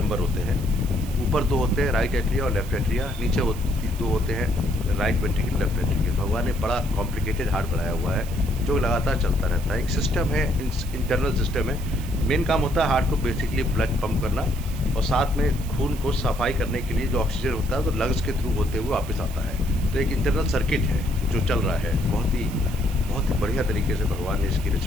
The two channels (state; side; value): noise; right; hiss, 17 dB below the sound